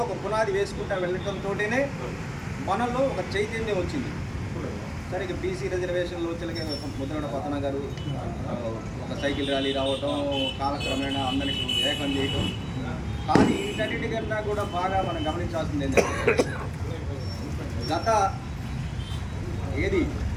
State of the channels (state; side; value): identical; both; correlation 1.00